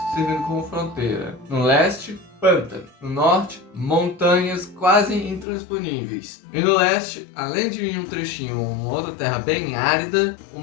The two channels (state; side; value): drops out; right; at 5.5 s